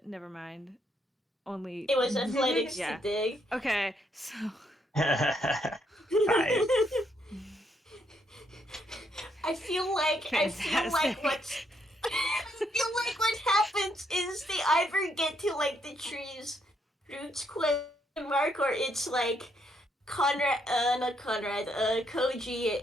Never mind. Only. It was athletics Yeah. to dig. Okay, so. Five. I feel like Fantastic. what's I feel like what happens is they either get to like the tree's roots question mark, or it's like Koji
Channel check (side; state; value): both; normal; correlation 0.75